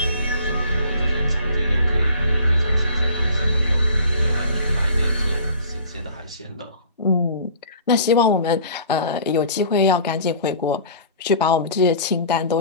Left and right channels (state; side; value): inverted; both; correlation -0.46